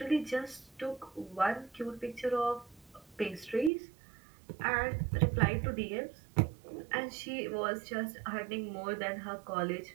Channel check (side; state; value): left; drops out; at 3.7 s